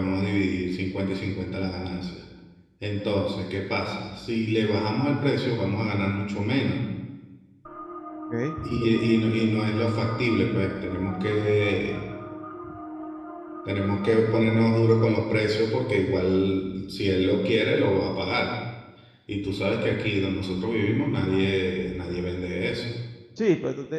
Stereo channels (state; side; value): identical; both; correlation 1.00